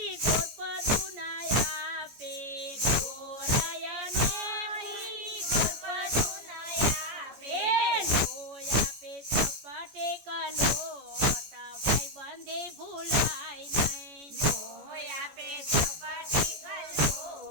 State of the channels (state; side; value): late; left; 14 ms